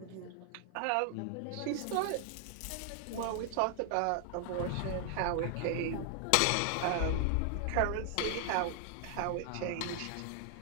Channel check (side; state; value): both; different; correlation 0.00